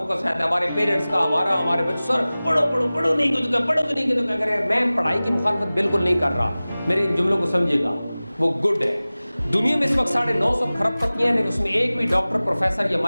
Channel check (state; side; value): inverted; both; correlation -0.98